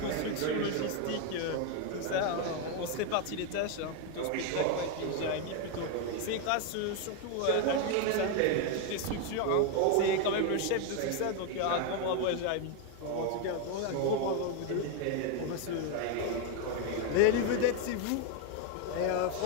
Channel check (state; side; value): different; both; correlation 0.01